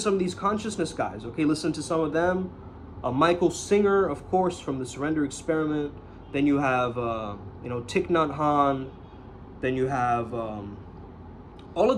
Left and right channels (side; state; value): both; identical; correlation 1.00